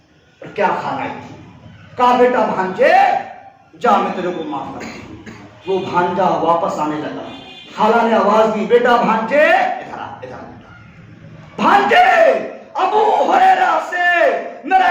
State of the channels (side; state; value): both; identical; correlation 1.00